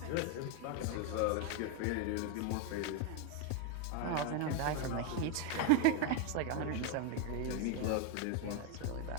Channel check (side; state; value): both; different; correlation 0.02